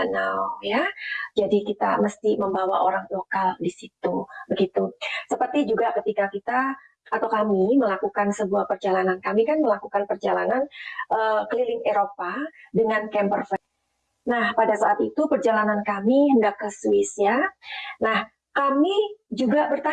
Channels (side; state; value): both; identical; correlation 1.00